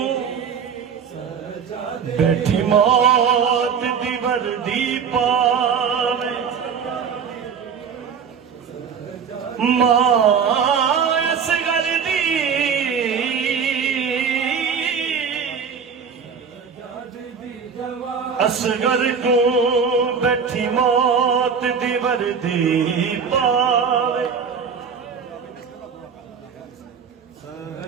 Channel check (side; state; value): left; quieter; 6.6 dB